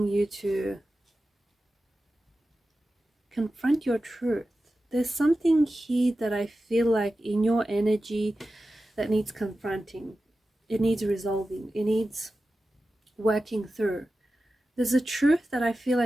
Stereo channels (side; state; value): both; normal; correlation 0.93